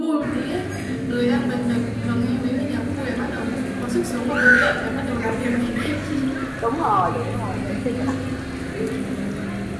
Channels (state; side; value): identical; both; correlation 1.00